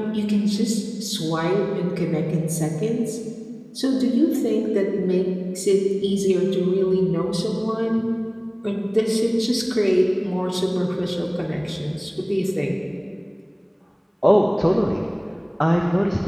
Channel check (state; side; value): identical; both; correlation 1.00